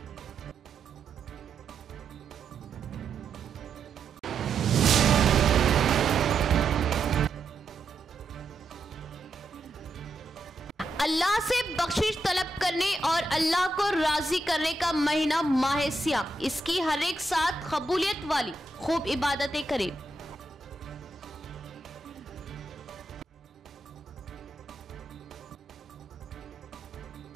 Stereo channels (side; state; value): left; quieter; 3.1 dB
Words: अल्लाह से बख्शिश तलब करने और अल्लाह को राजी करने का महीना माह सियाम, इसकी हर एक साथ कबूलियत वाली खूब इबादतें करें।